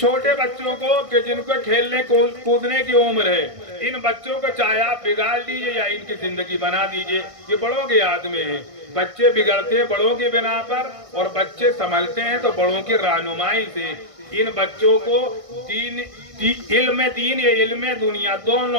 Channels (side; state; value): left; late; 1.6 ms